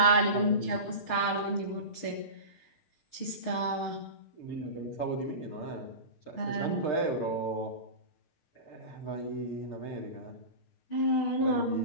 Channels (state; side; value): late; right; 6.6 ms